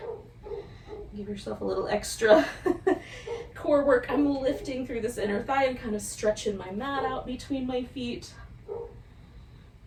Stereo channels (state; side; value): identical; both; correlation 1.00